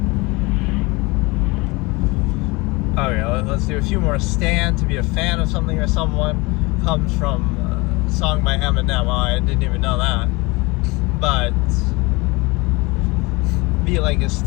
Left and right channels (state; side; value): quieter; right; 24.9 dB